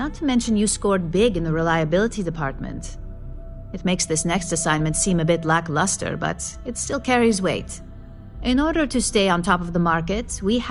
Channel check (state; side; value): identical; both; correlation 1.00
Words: to mention you scored big in the reliability department. It makes this next assignment seem a bit lackluster, but it still carries weight. In order to stay on top of the market, we